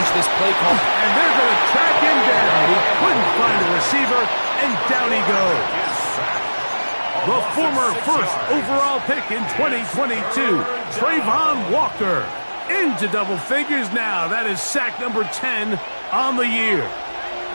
this play call? And they're going to track him down. He couldn't find a receiver, and down he goes. The former first overall pick in 2022, Trayvon Walker, into double figures now. That is sack number 10 on the year.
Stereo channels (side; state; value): both; inverted; correlation -1.00